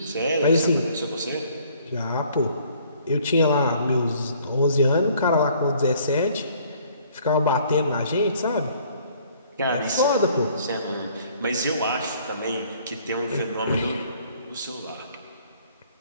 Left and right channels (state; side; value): inverted; both; correlation -0.59